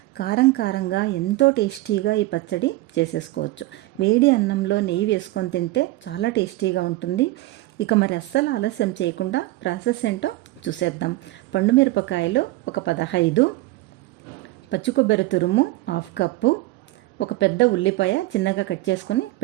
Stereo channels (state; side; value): quieter; left; 18.4 dB